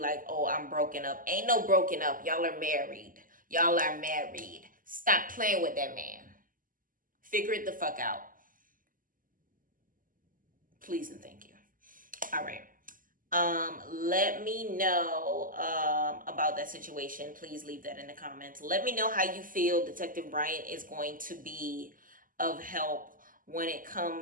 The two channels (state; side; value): late; left; 0.40 ms